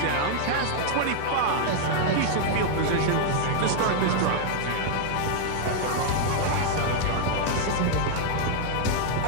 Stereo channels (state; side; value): different; both; correlation 0.00